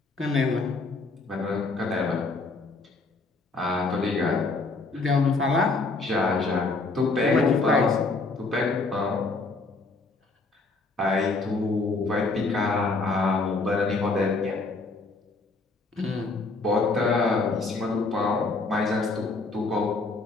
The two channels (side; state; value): right; quieter; 3.7 dB